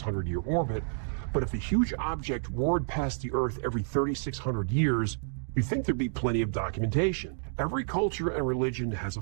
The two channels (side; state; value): left; silent; digital silence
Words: orbit, but if a huge object roared past the Earth every 3,600 years, you'd think there'd be plenty of documentation. Every culture and religion has a